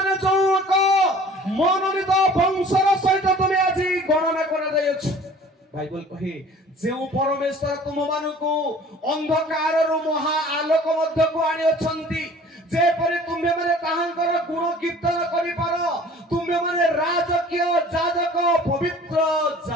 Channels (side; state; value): both; normal; correlation 0.48